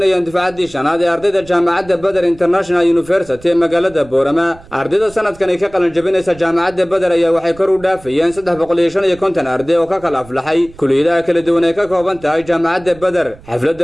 difaacaddii shanaad ee ardayda jaamacadda Badar International University ee magaalada Boorama. Ardayda sanadkan ay ka qalan jabinaysa jaamacadda Badar ayaa waxay kor u dhaafayeen 350 arday oo ka kala aflaxay kulliyadaha kala duwan ee ka kooban tahay jaamacadda Badar.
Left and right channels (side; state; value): right; noise; rumble, 22 dB below the sound